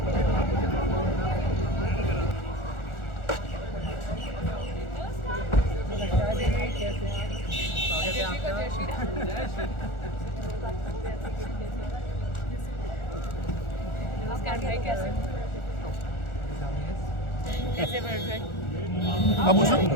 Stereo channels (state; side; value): late; right; 1.4 ms